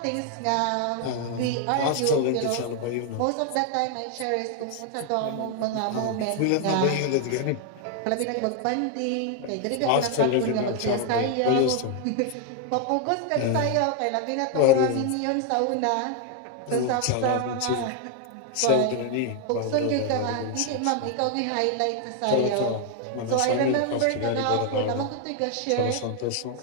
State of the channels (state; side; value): different; both; correlation 0.00